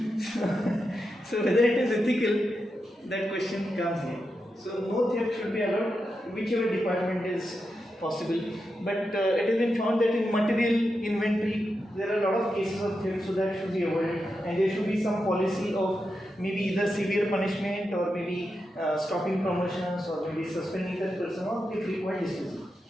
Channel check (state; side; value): normal; both; correlation 0.88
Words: So whether it is ethical, that question comes here. So no theft should be allowed, whichever department is possible. But it has been found that in material inventory, there are a lot of cases of theft, so that should be avoided, and there should be some policy of maybe either severe punishment or maybe stopping promotions or maybe suspending that person or if required dismissal